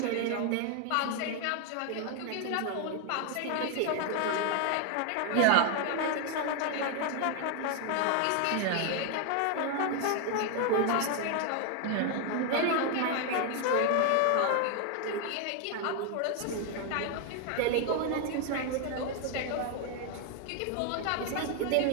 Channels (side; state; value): both; different; correlation 0.00